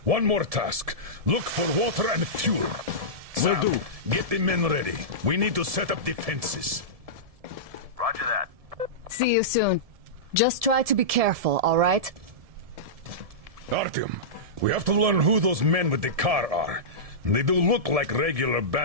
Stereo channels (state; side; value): late; left; 1.7 ms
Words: one more task. Look for water and fuel. Sam, Will do. Get the men ready. We need to set up defenses. Roger that. See you soon. Just try to be careful, alright? Artyom, we have to learn who those men with the car are. They do look like regular